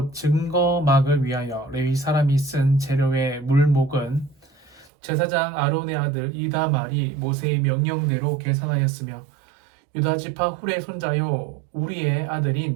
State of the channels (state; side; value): drops out; left; at 4.9 s